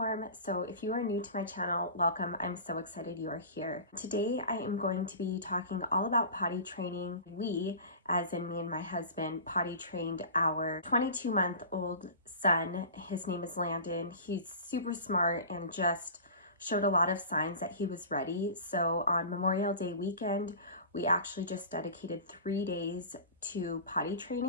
so if you are new to my channel, welcome. I'm so excited you are here. Today I am going to be talking all about potty training. We, as in me and my husband, potty trained our 22-month-old son. His name is Landon. He's super smart and just showed a lot of signs that he was ready. So on Memorial Day weekend, we actually just dedicated 3 days to potty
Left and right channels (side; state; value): both; inverted; correlation -0.36